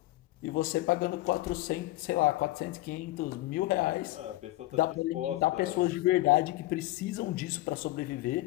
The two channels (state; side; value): quieter; right; 18.0 dB